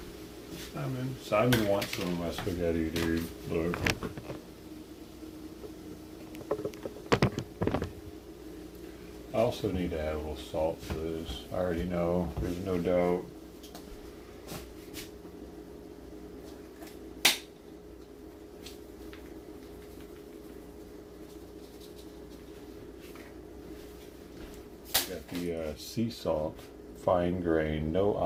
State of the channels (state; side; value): identical; both; correlation 1.00